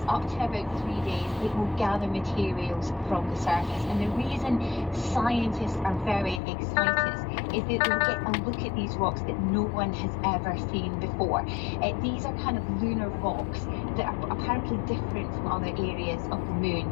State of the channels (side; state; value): right; drops out; at 6.4 s